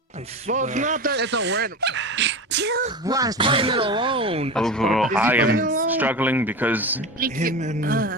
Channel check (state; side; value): normal; both; correlation 0.26